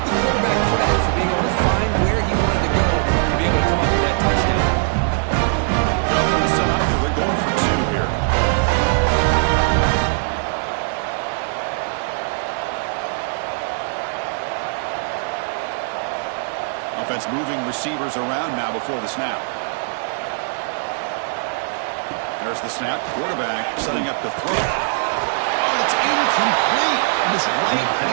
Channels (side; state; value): left; silent; digital silence